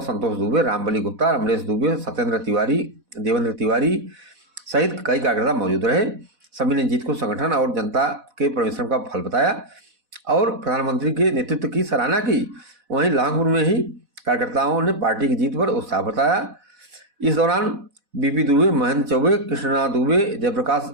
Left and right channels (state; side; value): late; left; 4.1 ms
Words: संतोष दुबे, रामबली गुप्ता, रमरेश दुबे, सत्येंद्र तिवारी, देवेंद्र तिवारी सहित कई कार्यकर्ता मौजूद रहे। सभी ने जीत को संगठन और जनता के परिश्रम का फल बताया और प्रधानमंत्री के नेतृत्व की सराहना की। वहीं लहंगपुर में ही कार्यकर्ताओं ने पार्टी की जीत पर उत्साह बताया। इस दौरान बीपी दुबे, महेंद्र चौबे, कृष्णा दुबे, जयप्रकाश